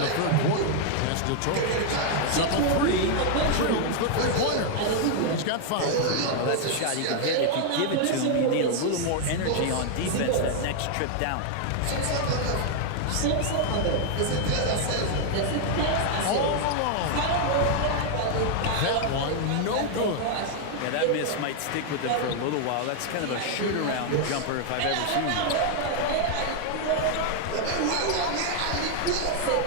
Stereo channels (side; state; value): both; different; correlation 0.00